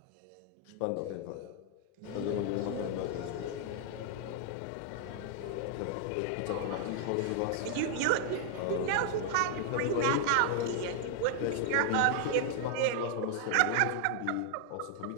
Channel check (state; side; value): different; both; correlation 0.00